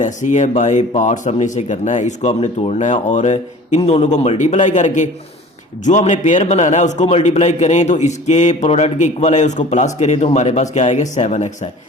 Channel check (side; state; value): both; normal; correlation 0.44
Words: ही है। बाय पार्ट्स हमने इसे करना है, इसको हमने तोड़ना है और इन दोनों को मल्टीप्लाई करके जो हमने पेयर बनाना है उसको मल्टीप्लाई करें तो इसके प्रोडक्ट के इक्वल है, उसको प्लस करें तो हमारे पास क्या आएगा, 7x है।